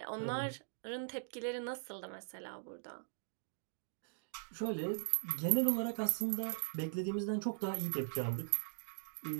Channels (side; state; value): left; silent; digital silence